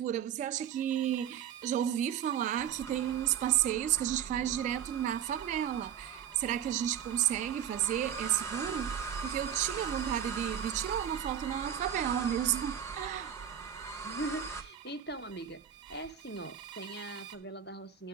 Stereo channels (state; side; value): quieter; left; 9.4 dB